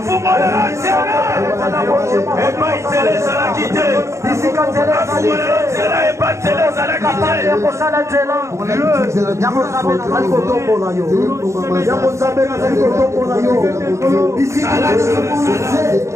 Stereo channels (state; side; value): late; left; 0.14 ms